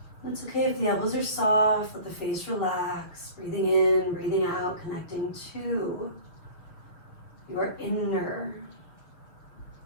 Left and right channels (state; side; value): late; right; 6.8 ms